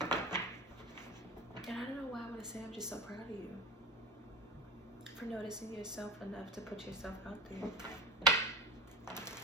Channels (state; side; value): normal; both; correlation 0.29